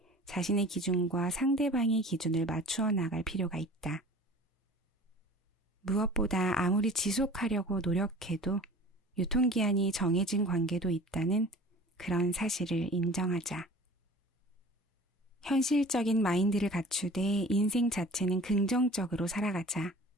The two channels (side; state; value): both; normal; correlation 0.43